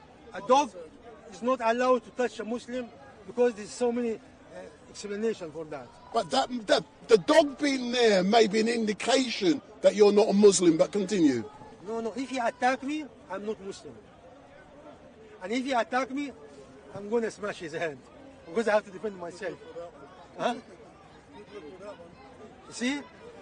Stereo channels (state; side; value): identical; both; correlation 1.00